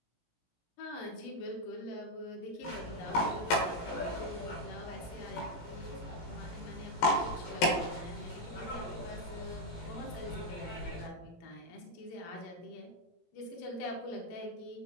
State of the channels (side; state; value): right; late; 17 ms